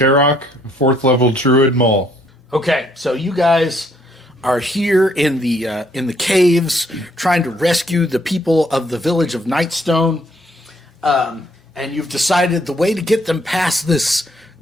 4th level Druid Mole. Okay, so you guys are here in the caves trying to rescue the people of the village of Nightstone, and you've decided the way to get them past this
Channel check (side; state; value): both; normal; correlation 0.67